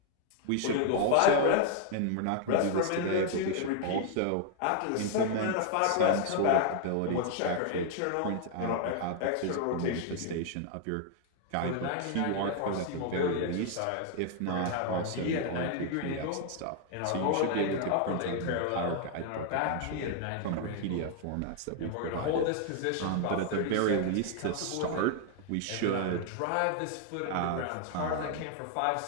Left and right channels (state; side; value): different; both; correlation 0.00